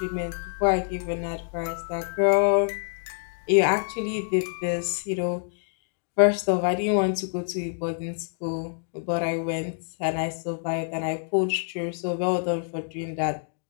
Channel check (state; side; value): silent; right; digital silence